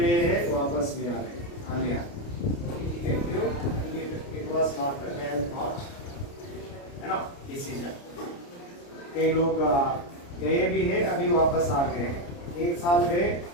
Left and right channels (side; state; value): right; late; 29 ms